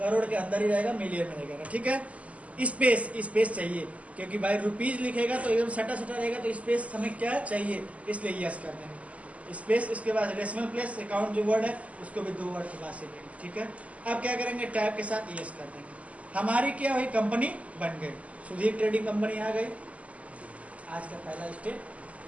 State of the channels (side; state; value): left; late; 0.069 ms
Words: के अंदर ही रहेगा, मिलियन में रहेगा। ठीक है, स्पेस चाहिए, क्योंकि भाई रुपीज लिखेगा तो एकदम सटा रहेगा, तो स्पेस हमें क्या चाहिए, इसलिए यस कर देंगे। स्पेस, इसके बाद डेसिमल प्लेस, अकाउंट जो वर्ड है उसको भी 2 वर्ड के बाद से लेंगे, ठीक है। अब क्या करेंगे, टैब के साथ यस कर देंगे, हमारी क्या हुई, कंपनी बन गई, सुधीर ट्रेडिंग कंपनी आ गई। आज का पहला स्टेप